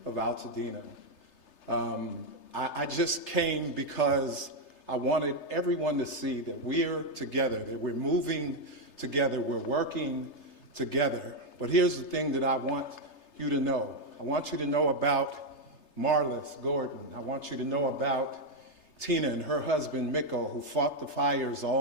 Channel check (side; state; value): right; late; 3.3 ms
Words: of Altadena. I just came because I wanted everyone to see that we're together, that we're moving together, we're working together. But here's the thing that I want you to know. I want you to know about Marlis Gordon. I want you to know about Tina and her husband, Mikko, who fought the fires